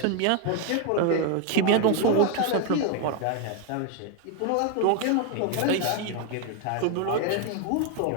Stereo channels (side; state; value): both; different; correlation 0.01